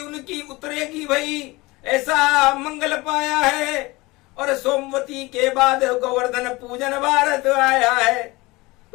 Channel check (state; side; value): quieter; right; 22.4 dB